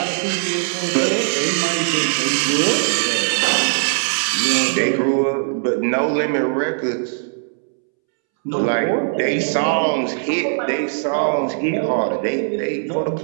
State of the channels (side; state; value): left; silent; 66 dB below the other